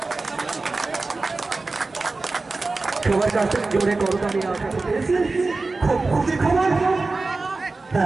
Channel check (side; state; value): left; quieter; 3.6 dB